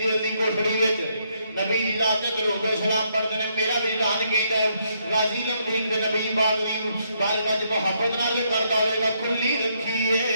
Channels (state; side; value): inverted; both; correlation -0.74